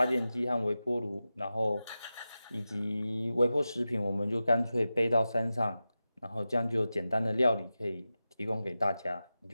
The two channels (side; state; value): both; inverted; correlation -0.93